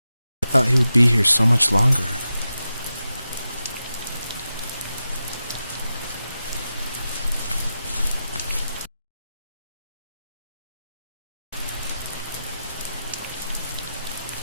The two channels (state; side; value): inverted; both; correlation -0.91